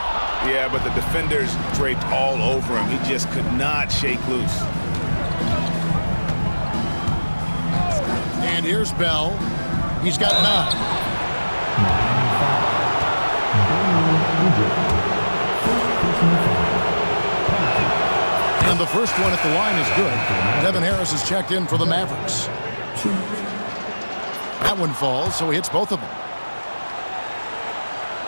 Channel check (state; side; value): inverted; both; correlation -1.00